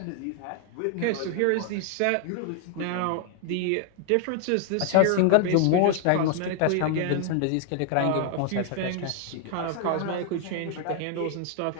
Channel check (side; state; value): both; different; correlation 0.00